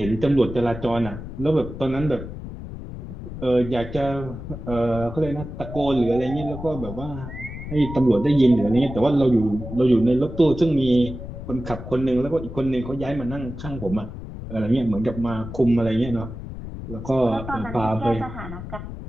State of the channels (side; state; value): left; noise; rumble, 10 dB below the sound